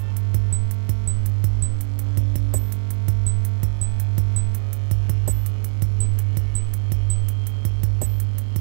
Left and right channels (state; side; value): silent; left; digital silence